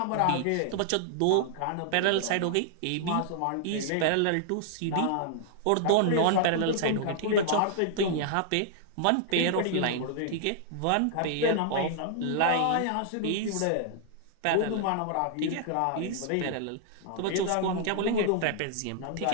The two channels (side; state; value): both; different; correlation -0.01